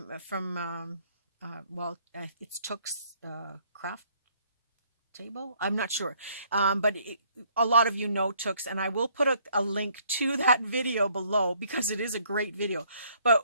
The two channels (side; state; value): both; inverted; correlation -0.64